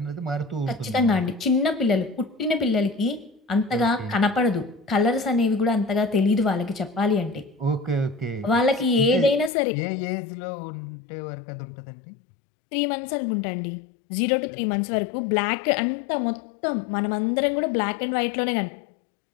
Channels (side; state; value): right; drops out; at 9.5 s